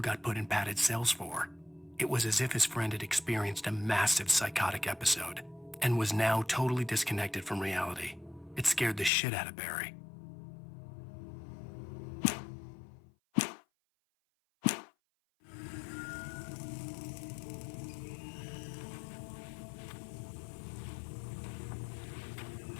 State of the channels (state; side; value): drops out; right; at 9.1 s